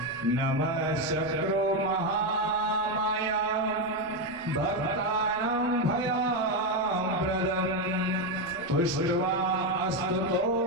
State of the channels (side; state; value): left; noise; rumble, 25 dB below the sound